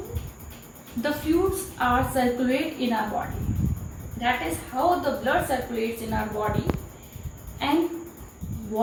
the fluids are circulate in our body, that is how the blood circulates in our body, and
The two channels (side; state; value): both; identical; correlation 1.00